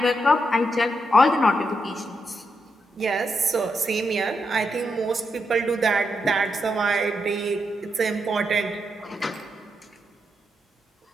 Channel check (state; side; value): normal; both; correlation 0.82